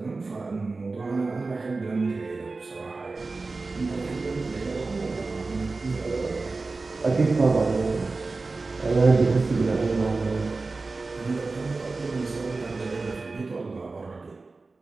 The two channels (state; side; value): quieter; left; 3.7 dB